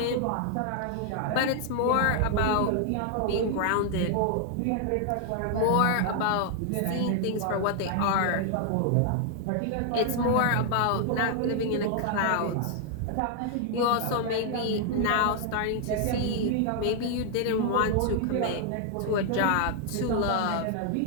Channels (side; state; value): both; different; correlation 0.00